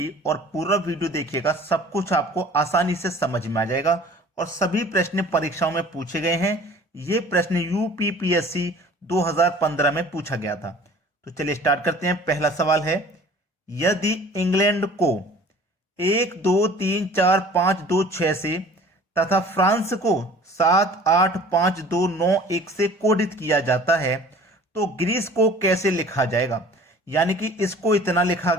और पूरा वीडियो देखिएगा। सब कुछ आपको आसानी से समझ में आ जाएगा और सभी प्रश्न परीक्षाओं में पूछे गए हैं। ये प्रश्न यूपीपीएससी 2015 में पूछा गया था। तो चलिए स्टार्ट करते हैं। पहला सवाल है, यदि इंग्लैंड को 1 2 3 4 5 2 6 से तथा फ्रांस को 7 8 5 2 9 1 से कोडित किया जाता है तो ग्रीस को कैसे लिखा जाएगा। यानी कि इसको इतना लिखा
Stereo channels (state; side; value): normal; both; correlation 0.48